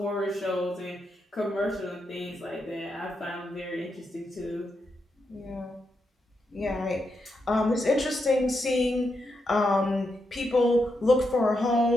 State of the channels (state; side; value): normal; both; correlation 0.83